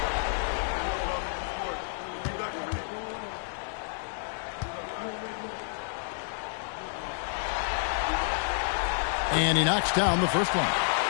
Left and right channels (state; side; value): silent; right; digital silence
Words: And he knocks down the first one.